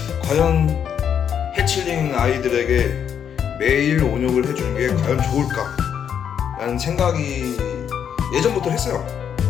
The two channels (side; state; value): right; quieter; 8.3 dB